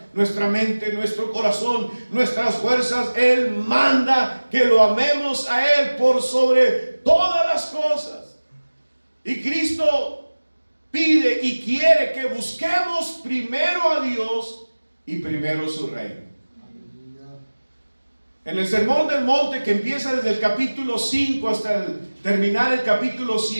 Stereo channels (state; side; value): inverted; both; correlation -1.00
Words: nuestra mente, nuestro corazón, nuestras fuerzas. Él manda que lo amemos a Él por sobre todas las cosas. Y Cristo pide y quiere que busquemos primero a Dios y primero su reino. En el Sermón del Monte, que empieza desde el capítulo 5 hasta terminar el capítulo